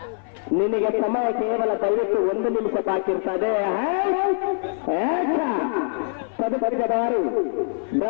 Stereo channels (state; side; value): silent; right; 55 dB below the other